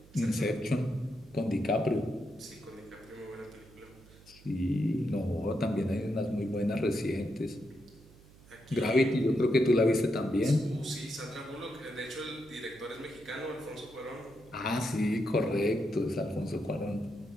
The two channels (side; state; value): right; noise; hum, 23 dB below the sound